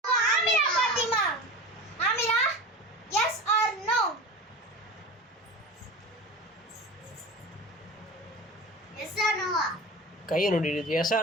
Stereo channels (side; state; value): both; normal; correlation 0.32